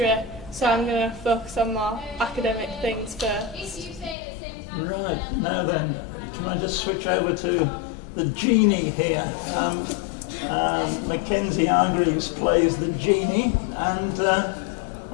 so I'm going to focus on more academic things first. Right, now then, can I just switch over to the genie here? Mackenzie Hargreaves plays the genie, and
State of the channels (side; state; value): right; drops out; at 4.2 s